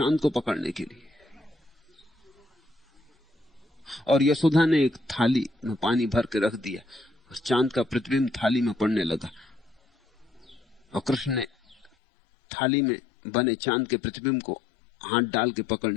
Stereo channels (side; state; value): right; drops out; at 11.9 s